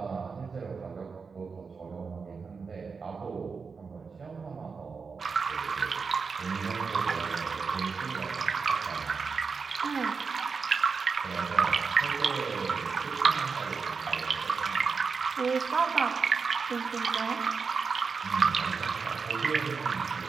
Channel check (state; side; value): quieter; left; 5.2 dB